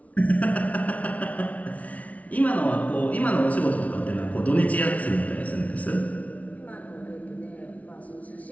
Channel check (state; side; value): late; right; 0.068 ms